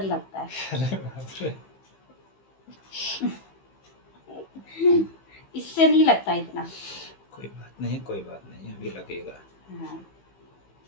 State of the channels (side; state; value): right; late; 15 ms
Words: लगता है। अरे बाप रे। इससे नहीं लगता इतना। कोई बात नहीं, कोई बात नहीं, अभी लगेगा। हाँ